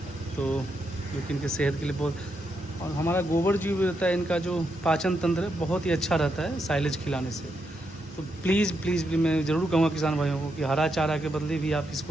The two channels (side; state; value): both; normal; correlation 0.81